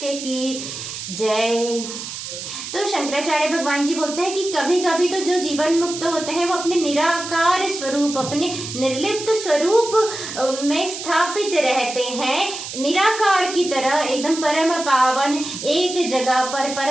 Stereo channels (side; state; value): right; noise; hiss, 8 dB below the sound